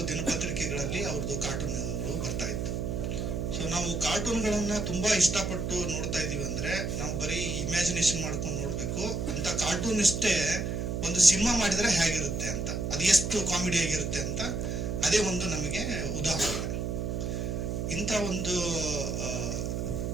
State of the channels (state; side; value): noise; right; hum, 1 dB below the sound